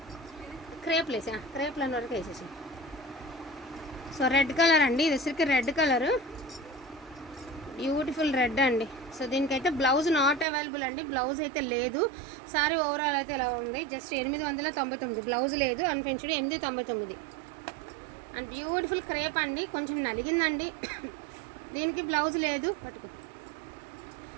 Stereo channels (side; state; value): left; drops out; at 10.5 s